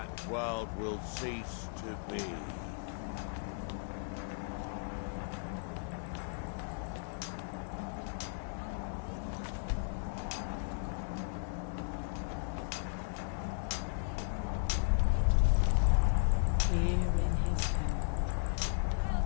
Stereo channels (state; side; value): silent; right; 54 dB below the other